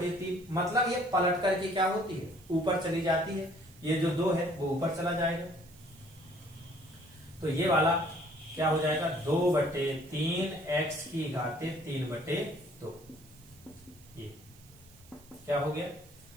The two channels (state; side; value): noise; right; hiss, 25 dB below the sound